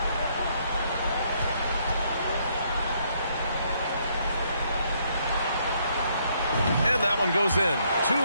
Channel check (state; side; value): inverted; both; correlation -0.70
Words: And that one goes in.